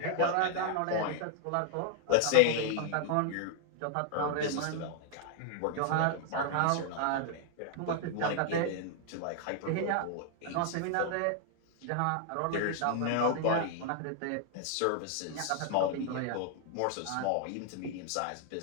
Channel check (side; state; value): both; different; correlation 0.00